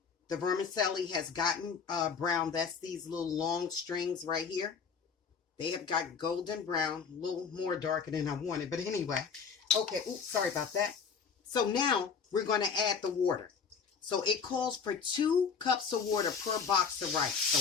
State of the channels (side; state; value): right; quieter; 6.0 dB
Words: The vermicelli has gotten brown. That's these little long strings right here. They have got golden brown, a little more darker than I wanted. But anyway, okay, oops, sorry about that. So now we're going to add the water. So it calls for 2 cups of water per box of rice. So